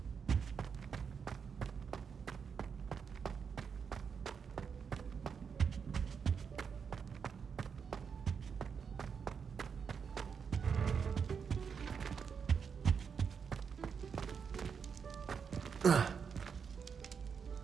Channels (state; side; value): quieter; left; 6.4 dB